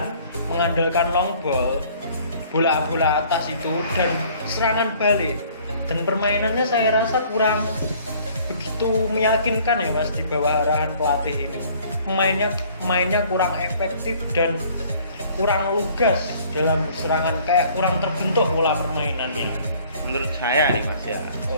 mengandalkan long ball, bola-bola atas itu, dan serangan balik. Dan permainannya saya rasa kurang begitu meyakinkan ya Mas di bawah arahan pelatih ini. Mainnya kurang efektif dan kurang lugas dalam serangan, kayak kurang terbentuk pola permainannya. Menurut saya nih Mas ya,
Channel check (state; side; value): inverted; both; correlation -0.56